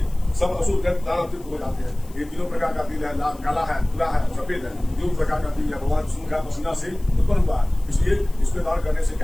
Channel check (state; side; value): noise; left; hiss, 25 dB below the sound